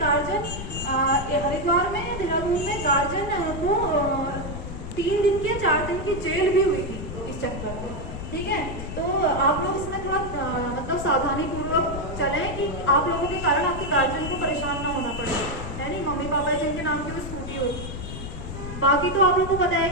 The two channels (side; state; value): left; noise; rumble, 8 dB below the sound